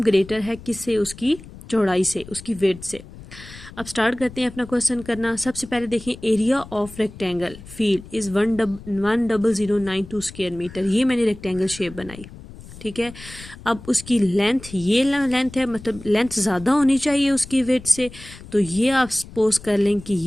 ग्रेटर है किससे, उसकी चौड़ाई से, उसकी विड्थ से। अब स्टार्ट करते हैं अपना क्वेश्चन करना। सबसे पहले देखें, area of rectangle field is 10092 square metre. ये मैंने रेक्टेंगल शेप बनाई। ठीक है। अब उसकी लेंथ, ये लेंथ है, मतलब लेंथ ज़्यादा होनी चाहिए उसकी विड्थ से, तो ये आप सपोज कर लें कि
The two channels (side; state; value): left; noise; rumble, 17 dB below the sound